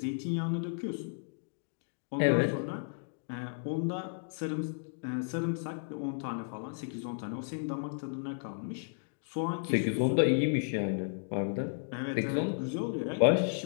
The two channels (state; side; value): silent; right; digital silence